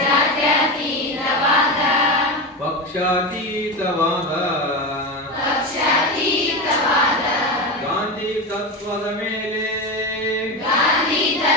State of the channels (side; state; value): both; normal; correlation 0.19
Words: ಪಕ್ಷಾತೀತವಾದ ಗಾಂಧಿ ತತ್ವದ ಮೇಲೆ